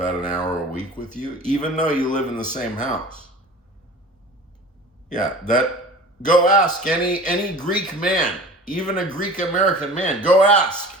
an hour a week with you, even though you live in the same house. Yeah, go ask any Greek man, even a Greek American man, go ask.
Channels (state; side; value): normal; both; correlation 0.40